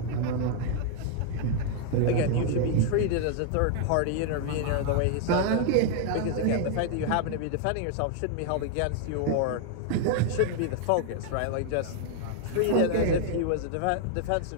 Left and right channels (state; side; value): different; both; correlation 0.00